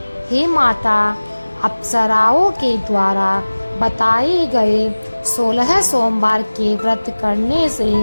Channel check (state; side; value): inverted; both; correlation -1.00